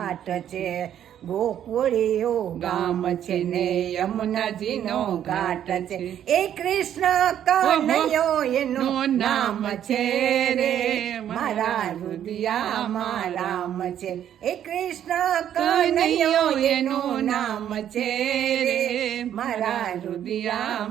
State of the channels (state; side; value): quieter; left; 10.3 dB